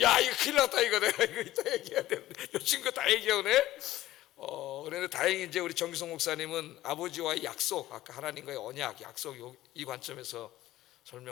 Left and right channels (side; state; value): right; quieter; 15.2 dB